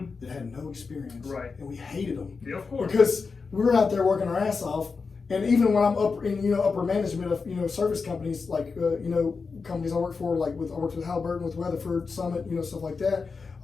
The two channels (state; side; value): quieter; right; 4.8 dB